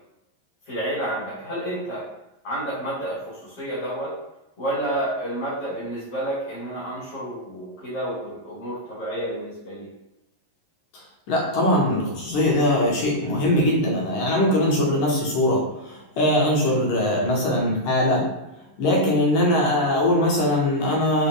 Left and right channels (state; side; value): late; right; 11 ms